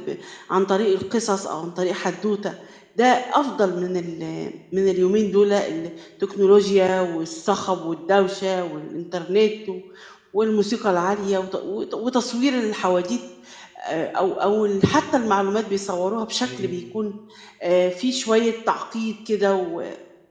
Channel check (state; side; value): identical; both; correlation 1.00